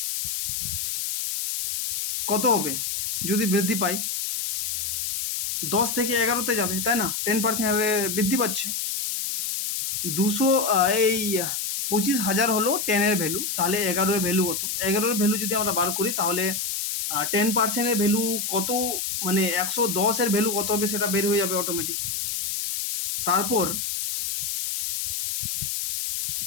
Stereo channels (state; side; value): noise; left; hiss, 2 dB below the sound